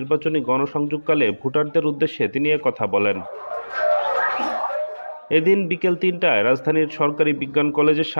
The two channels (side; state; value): both; inverted; correlation -1.00